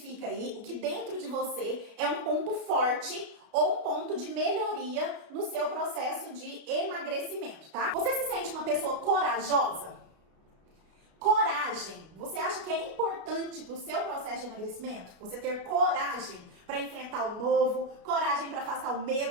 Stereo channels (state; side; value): late; left; 33 ms